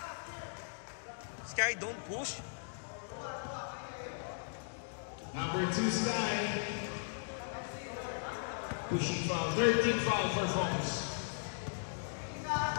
Sky, don't push. Number 2, Sky. Pushing foul. 13th foul for Focus.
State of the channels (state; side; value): silent; right; digital silence